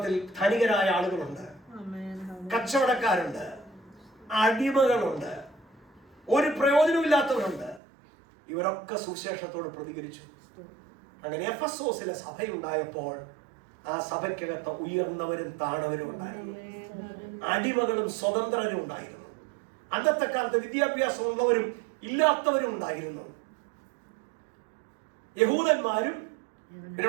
ധനികരായ ആളുകളുണ്ട്, കച്ചവടക്കാരുണ്ട്, അടിമകളുണ്ട്, ഒരു പ്രയോജനമില്ലാത്തവരുണ്ട്. ഇവരൊക്കെ സുവിശേഷത്തോട് പ്രതികരിച്ചു. അങ്ങനെ എഫെസോസിലെ സഭയുണ്ടായപ്പോൾ ആ സഭയ്ക്കകത്ത് ഉയർന്നവരും താണവരും ഉണ്ടായിരുന്നു, അടിമകളും സ്വതന്ത്രരും ഉണ്ടായിരുന്നു. അന്നത്തെ കാലത്ത് വിദ്യാഭ്യാസമുള്ളവരും ഇല്ലാത്തവരും ഉണ്ടായിരുന്നു. യഹൂദന്മാരും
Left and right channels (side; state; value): left; drops out; at 7.8 s